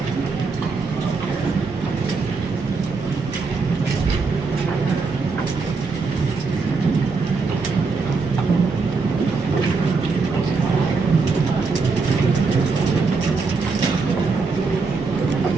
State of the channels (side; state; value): left; quieter; 4.4 dB